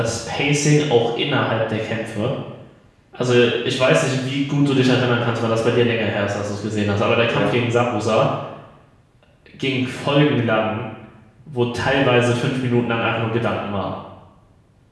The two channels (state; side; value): identical; both; correlation 1.00